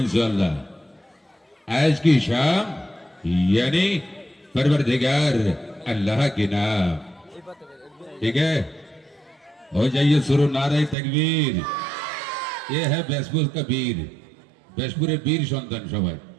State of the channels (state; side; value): drops out; left; at 11.0 s